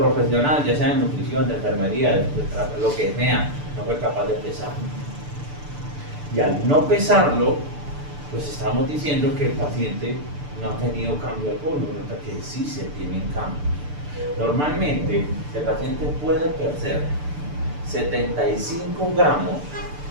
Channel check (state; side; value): late; left; 6.8 ms